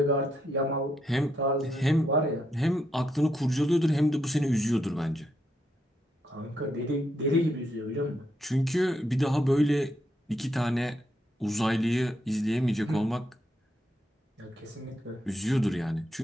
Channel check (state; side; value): normal; both; correlation 0.79